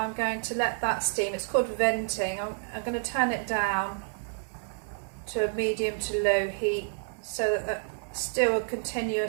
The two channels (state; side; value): silent; left; digital silence